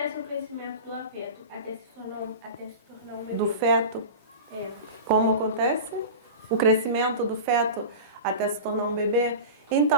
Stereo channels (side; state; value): both; inverted; correlation -0.30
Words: o crescimento do feto até se tornar um bebê? Do feto? Como acontece? O crescimento do feto até se tornar um bebê?